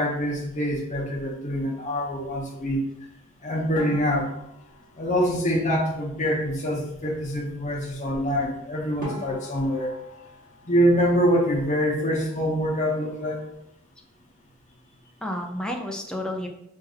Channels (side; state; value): both; normal; correlation 0.53